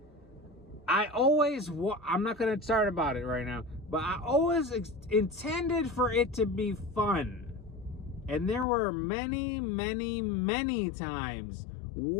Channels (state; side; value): drops out; right; at 8.7 s